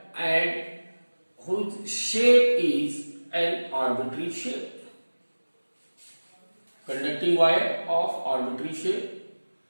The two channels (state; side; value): inverted; both; correlation -1.00